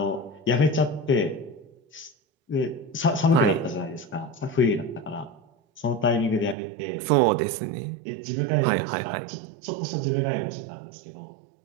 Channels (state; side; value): drops out; left; at 6.6 s